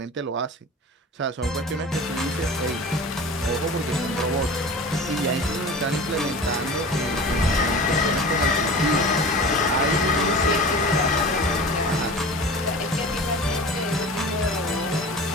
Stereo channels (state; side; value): normal; both; correlation 0.37